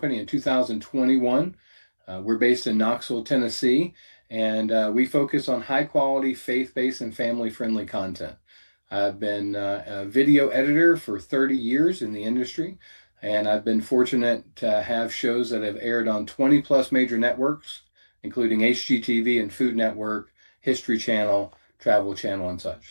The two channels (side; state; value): both; inverted; correlation -1.00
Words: in 2021. We're based in Knoxville, Tennessee, and we focus on high quality, faith-based and family-friendly content. I've been a video editor for 30 years in the industry. And I've been fortunate to have shows that have aired on 20 plus major networks, including HGTV and Food Network, History Channel, Travel Channel, and